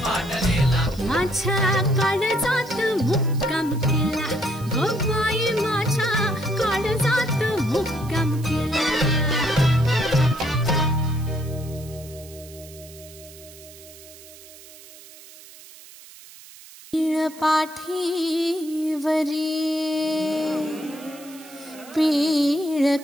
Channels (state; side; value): noise; right; hiss, 19 dB below the sound